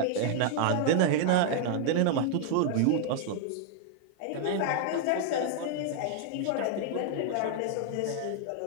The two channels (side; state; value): both; different; correlation 0.00